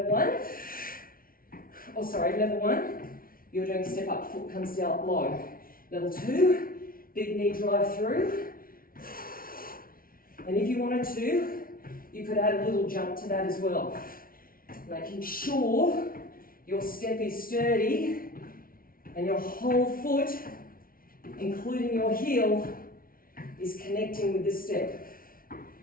one, level one, you're doing step up, foot comes down low. Level two, big knee drive through. And if you wanted to, you could add a little jump to that as well. Making sure your step is sturdy and your whole foot, including your heel, is connecting with the step.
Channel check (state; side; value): late; right; 0.42 ms